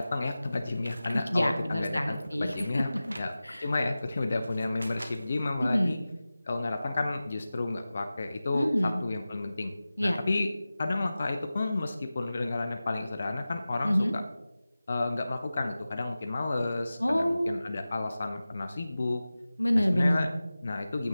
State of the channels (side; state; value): both; inverted; correlation -0.96